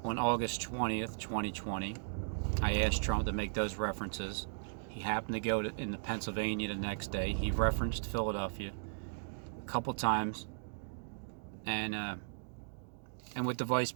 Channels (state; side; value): silent; left; digital silence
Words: on August 20th, 2020, I asked Trump to make those references. He happened to go into Pennsylvania the next day. He referenced Philadelphia a couple times, and with the vice